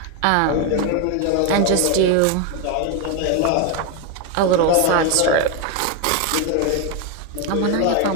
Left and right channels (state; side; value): different; both; correlation 0.02